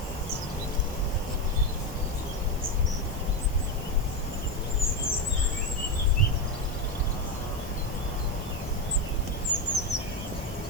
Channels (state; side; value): normal; both; correlation 0.12